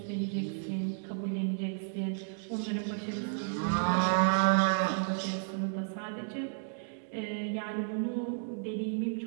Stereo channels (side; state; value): left; silent; digital silence